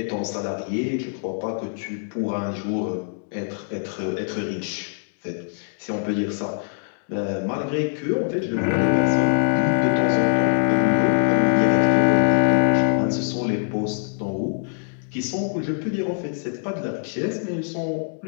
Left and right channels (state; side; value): silent; right; digital silence